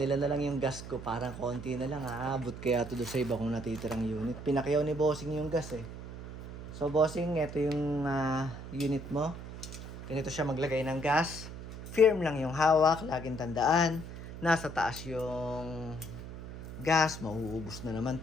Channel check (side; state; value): right; noise; hum, 11 dB below the sound